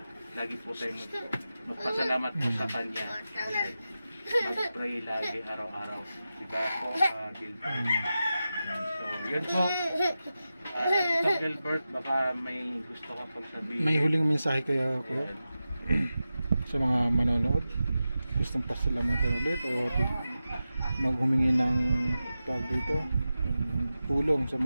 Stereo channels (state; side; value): inverted; both; correlation -0.93